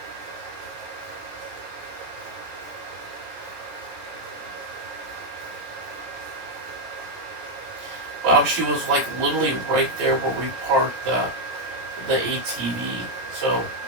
Wow, she was, like, literally right there where we parked the ATV. So,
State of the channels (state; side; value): late; left; 17 ms